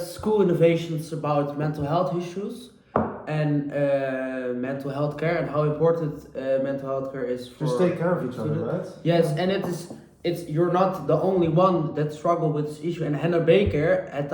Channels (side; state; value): both; identical; correlation 1.00